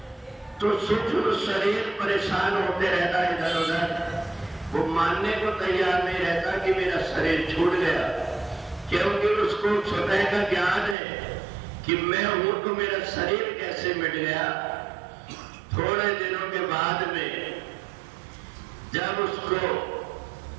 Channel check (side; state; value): left; drops out; at 11.0 s